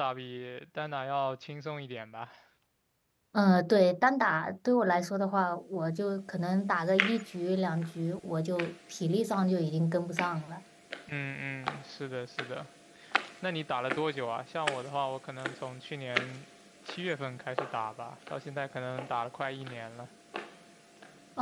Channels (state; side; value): identical; both; correlation 1.00